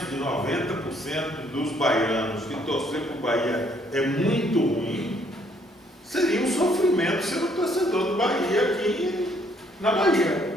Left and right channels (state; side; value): normal; both; correlation 0.66